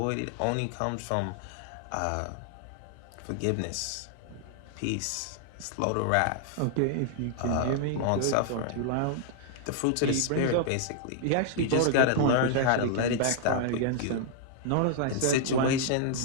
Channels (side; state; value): both; different; correlation 0.00